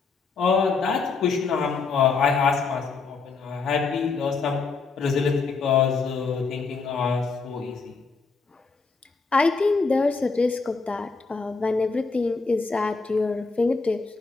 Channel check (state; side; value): quieter; right; 4.6 dB